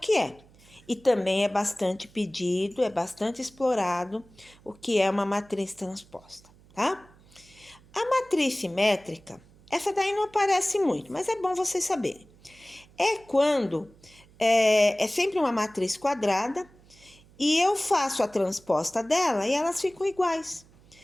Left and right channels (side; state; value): right; noise; hum, 27 dB below the sound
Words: é. E também é bastante pedido, é bastante explorado o que é uma matriz transposta, tá? A matriz simétrica, essa daí não aparece muito, mas é bom vocês saberem. É quando é sempre uma matriz quadrada e eu faço a transposta dela e elas ficam iguais.